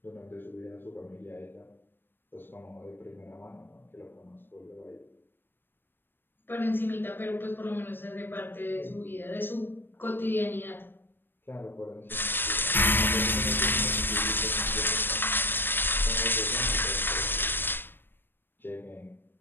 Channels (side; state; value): right; late; 0.097 ms